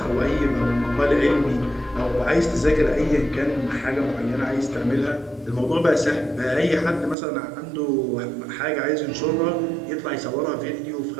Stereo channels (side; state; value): left; drops out; at 7.2 s